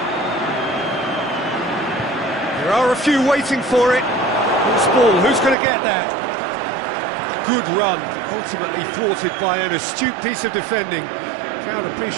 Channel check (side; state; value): left; drops out; at 5.6 s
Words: There are a few waiting for it. Who's ball? Who's going to get that? Good run, ultimately thwarted by an astute piece of defending. Crowd